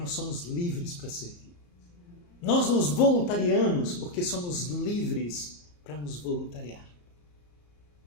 somos livres para servir. Nós nos voluntariamos porque somos livres para nos voluntariar.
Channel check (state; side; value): late; right; 34 ms